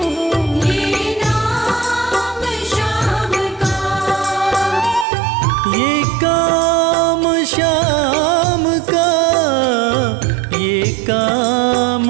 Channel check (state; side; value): drops out; left; at 5.1 s